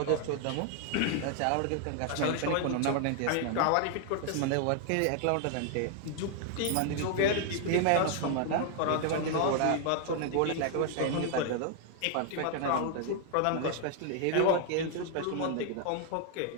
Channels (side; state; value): both; different; correlation 0.00